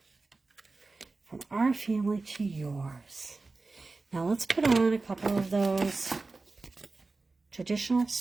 From our family to yours. Now let's put on a couple of those traditional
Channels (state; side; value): quieter; left; 3.6 dB